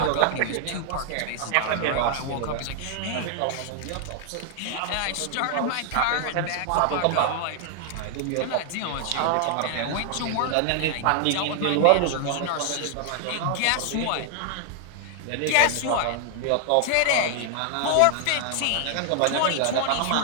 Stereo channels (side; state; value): both; different; correlation 0.00